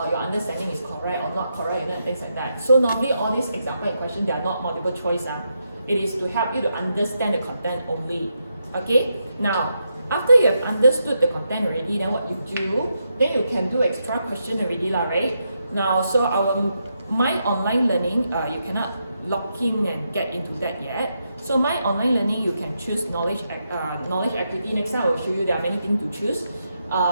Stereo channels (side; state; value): both; inverted; correlation -0.82